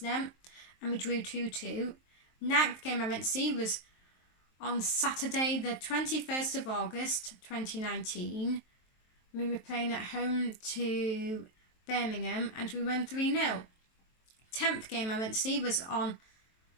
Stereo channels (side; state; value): right; late; 23 ms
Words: and we drew 2-2. Ninth game I went to see was on Saturday the 21st of August 2019. We were playing at home to Birmingham and we won 3-0. 10th game I went to see was on